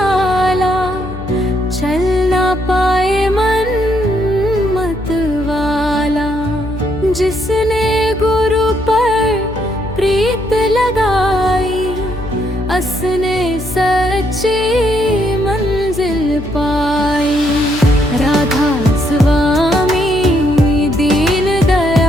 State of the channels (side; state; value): left; noise; hum, 11 dB below the sound